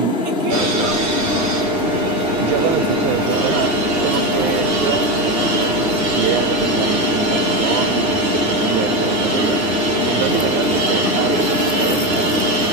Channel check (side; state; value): left; late; 9.8 ms